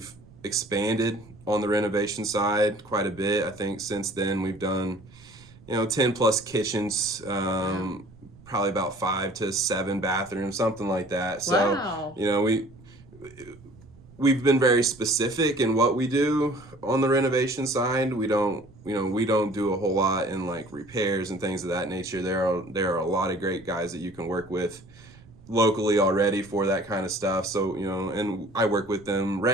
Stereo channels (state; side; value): noise; right; rumble, 23 dB below the sound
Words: expanded on the renovation side quite a bit. I think since then we've done 10 plus kitchens, Wow. probably about 5 to 7 bathrooms, something like that. So Wow. we've been very specific in what we do on the renovation side. We don't do a whole lot in like repairs and things of that nature. There are a lot of great guys that you can work with locally already for that kind of stuff. So, and I work with them